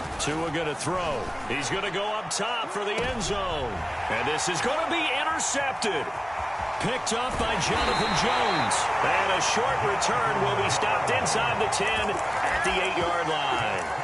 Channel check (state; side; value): identical; both; correlation 1.00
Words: Tua going to throw. He's going to go up top for the end zone. And this is going to be intercepted. Picked up by Jonathan Jones. And a short return will be stopped inside the 10 at the 8-yard line.